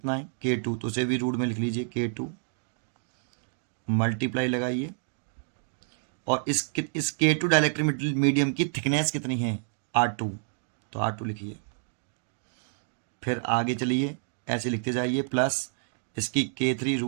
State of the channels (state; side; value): silent; left; digital silence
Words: है K2, तो उसे भी रूट में लिख लीजिए K2, मल्टीप्लाई लगाइए और इस K2 डाइलेक्ट्रिक मीडियम की थिकनेस कितनी है, R2, तो R2 लिखिए। फिर आगे चलिए, ऐसे लिखते जाइए, प्लस इसकी K3